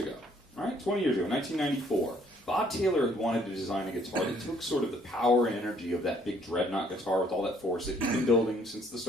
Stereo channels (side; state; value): both; normal; correlation 0.63